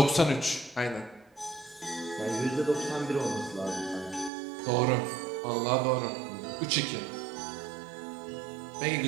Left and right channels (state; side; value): drops out; left; at 4.3 s